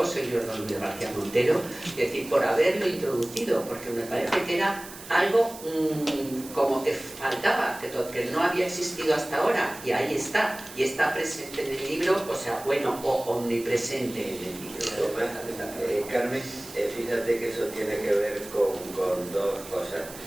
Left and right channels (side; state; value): right; noise; hiss, 15 dB below the sound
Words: señor Don Luis García Montero, es decir, por haberlo introducido, porque me parece que era algo como que faltaba, que no había existido hasta ahora, y ahí está, y está presente en el libro, o sea, bueno, o omnipresente en el libro. Carmen, fíjate que eso tiene que ver con dos cosas.